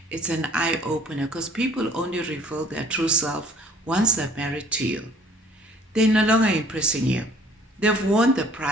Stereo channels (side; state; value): both; normal; correlation 0.55